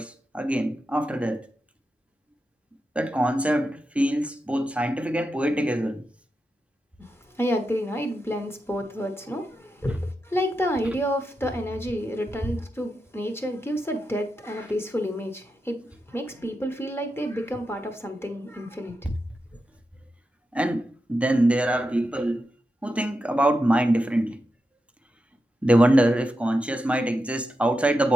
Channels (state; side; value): normal; both; correlation 0.88